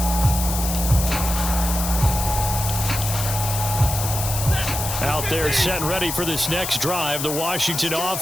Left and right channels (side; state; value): left; noise; hiss, 4 dB below the sound